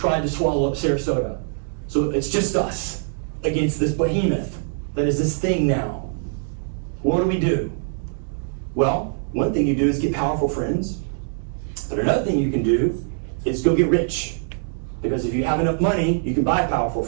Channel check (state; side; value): silent; left; digital silence